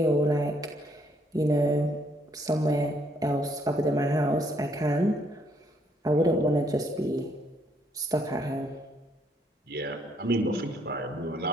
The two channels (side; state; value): both; normal; correlation 0.70